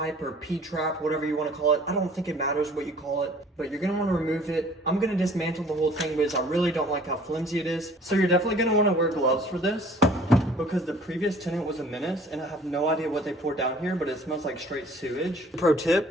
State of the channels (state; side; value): normal; both; correlation 0.52